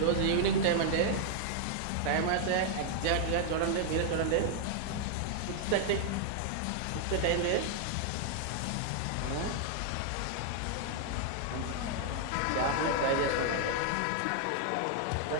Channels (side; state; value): both; different; correlation 0.00